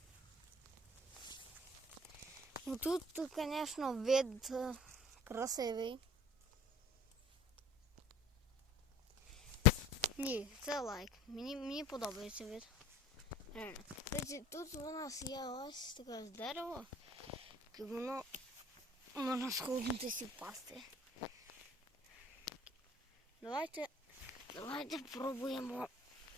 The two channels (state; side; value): normal; both; correlation 0.48